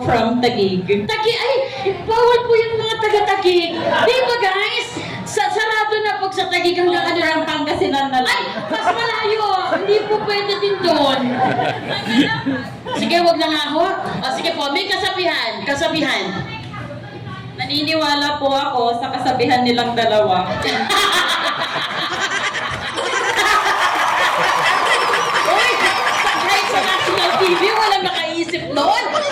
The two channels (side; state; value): both; identical; correlation 1.00